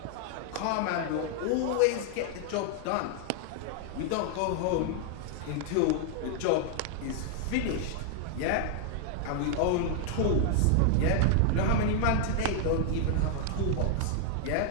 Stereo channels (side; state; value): both; different; correlation 0.00